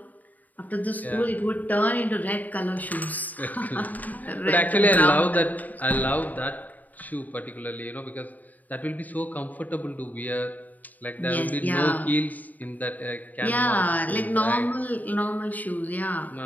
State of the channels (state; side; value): late; right; 0.080 ms